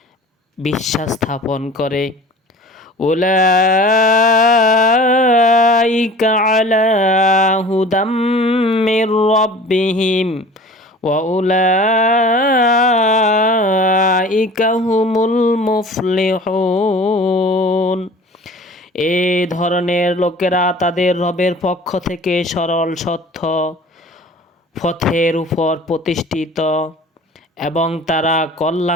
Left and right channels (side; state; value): both; normal; correlation 0.43